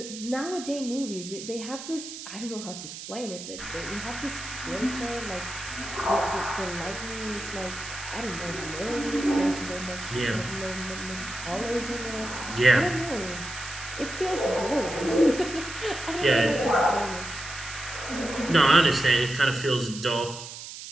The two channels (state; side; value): noise; right; hiss, 11 dB below the sound